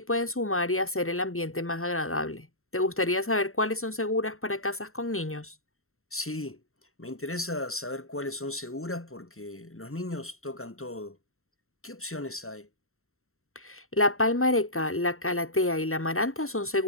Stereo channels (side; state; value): right; late; 0.62 ms